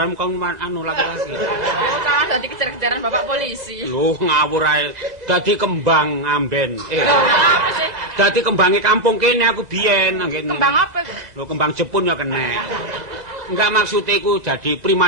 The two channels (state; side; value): late; left; 2.0 ms